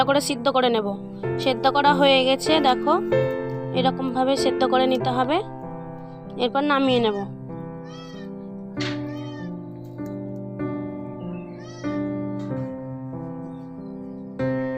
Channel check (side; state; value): both; identical; correlation 1.00